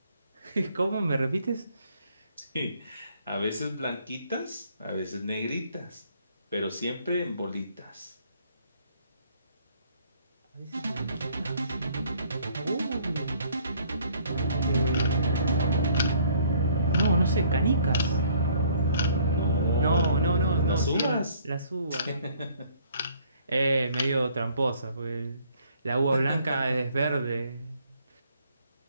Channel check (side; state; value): both; inverted; correlation -0.61